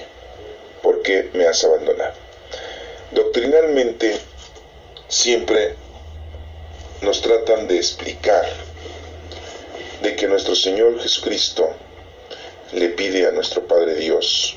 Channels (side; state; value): both; identical; correlation 1.00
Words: ¿por qué me has abandonado? Doctrinalmente, siempre nos tratan de explicar de que nuestro Señor Jesucristo le pide a nuestro Padre Dios